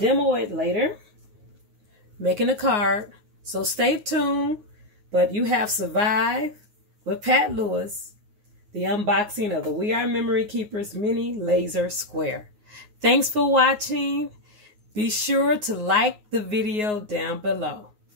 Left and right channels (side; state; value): left; late; 9.5 ms